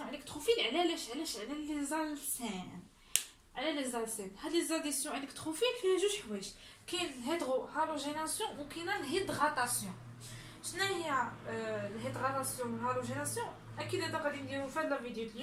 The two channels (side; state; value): both; identical; correlation 1.00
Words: électrophiles, على لي زالسين. هاد لي زاديسيون الكتروفيل فيها جوج حوايج. كاين الهيدرو هالوجيناسيون وكاين الهيدغاتاسيون. شنو هي الهيدغاتاسيون والهالوجيناسيون؟ اكيد هذا غادي نديرو في هاد الفيديو